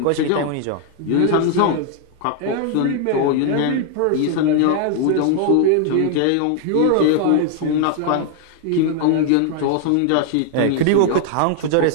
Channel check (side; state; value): both; different; correlation 0.00